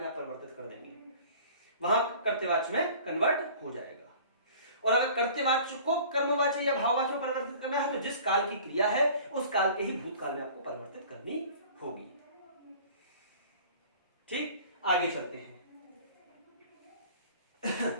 आप परिवर्तित कर देंगे, वहां कर्तवाच्य में कन्वर्ट हो जाएगा। और अगर कर्तवाच्य को कर्मवाच्य या भाववाच्य में परिवर्तित करना है तो जिस काल की क्रिया है उस काल के ही भूतकाल में आपको परिवर्तित करनी होगी। ठीक, आगे चलते हैं।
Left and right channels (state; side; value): inverted; both; correlation -0.46